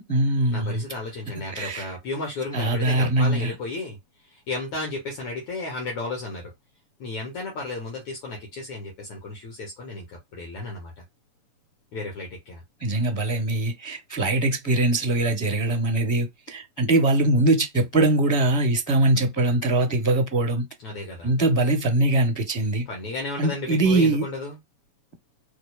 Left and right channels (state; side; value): late; right; 7.0 ms